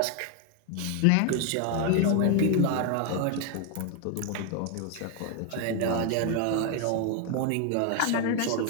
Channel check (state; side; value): different; both; correlation 0.00